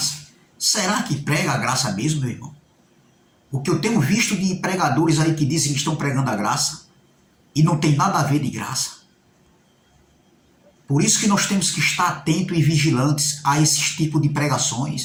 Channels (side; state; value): both; identical; correlation 1.00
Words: Será que prega a graça mesmo, meu irmão? O que eu tenho visto de pregadores aí que dizem que estão pregando a graça e não tem nada a ver de graça. Por isso que nós temos que estar atentos e vigilantes a esses tipos de